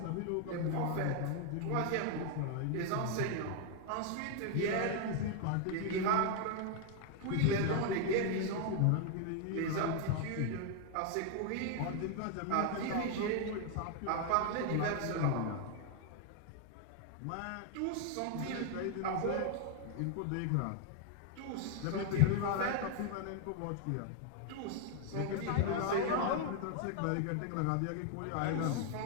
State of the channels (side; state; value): both; different; correlation 0.00